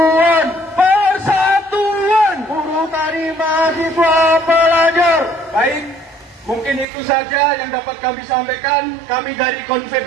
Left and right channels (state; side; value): drops out; left; at 6.9 s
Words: Persatuan! Buruh, tani, mahasiswa, pelajar! Baik, mungkin itu saja yang dapat kami sampaikan. Kami dari